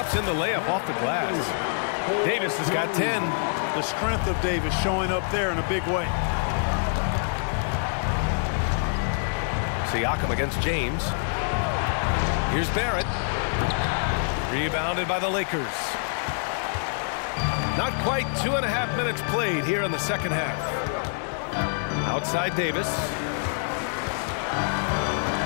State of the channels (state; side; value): silent; right; digital silence